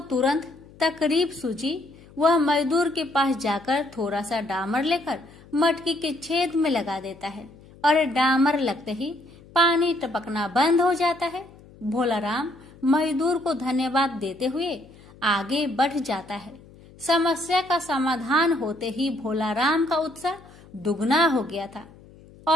तुरंत तकलीफ सूझी। वह मजदूर के पास जाकर थोड़ा सा डामर लेकर मटकी के छेद में लगा देता है और डामर लगते ही पानी टपकना बंद हो जाता है। भोलाराम मजदूर को धन्यवाद देते हुए आगे बढ़ जाता है। समस्या का समाधान होते ही भोलाराम का उत्साह दुगना हो गया था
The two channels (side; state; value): left; noise; hum, 23 dB below the sound